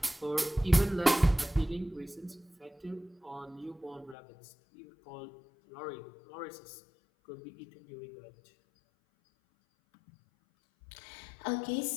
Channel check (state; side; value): drops out; right; at 4.2 s